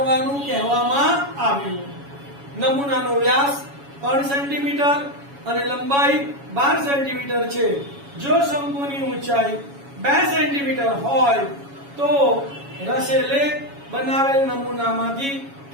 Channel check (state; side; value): late; left; 7.2 ms